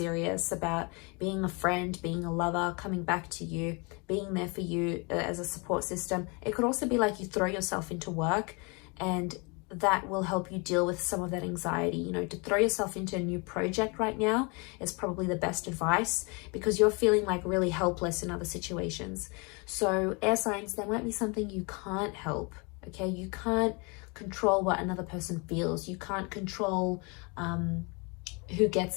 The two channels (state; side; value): quieter; right; 30.8 dB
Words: about being a friend, being a lover, coming back to you, being there for you as a support system. It could also be like you throw yourself into work, and that will help you deal with some of that anxiety. You know, to throw yourself into a new project right now is probably the best advice, because you're feeling like really helpless in other situations. So air signs, there might be something you can't help, okay? You can't control what another person feels. You can't control who